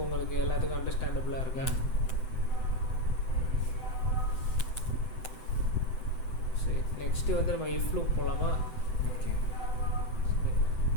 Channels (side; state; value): right; late; 7.9 ms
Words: உங்களுக்கு எல்லாத்துக்கும் அண்டர்ஸ்டாண்டபிளாக இருக்கா? சரி, நெக்ஸ்ட்டு வந்து நம்ம இஃப் லூப் போகலாமா? ஓகே.